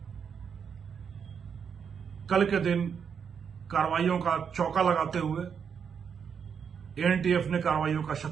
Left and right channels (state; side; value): quieter; left; 7.0 dB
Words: कल के दिन कार्रवाइयों का चौका लगाते हुए एनटीएफ ने कार्रवाइयों का